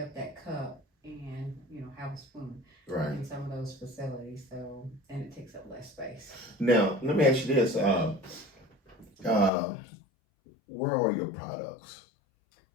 that cup and have a spoon Right. in some of those facilities. So and it takes up less space. Now, let me ask you this. Uh, where are your products?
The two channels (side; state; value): right; drops out; at 9.5 s